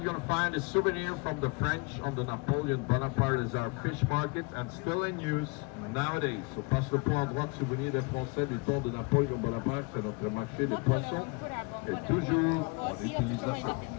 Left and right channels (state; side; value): quieter; right; 29.3 dB